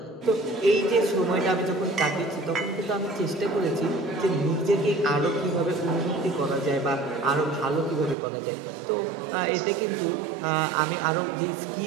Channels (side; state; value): left; drops out; at 8.2 s